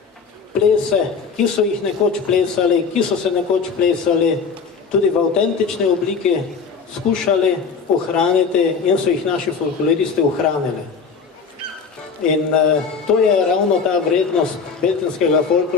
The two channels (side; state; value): right; quieter; 5.4 dB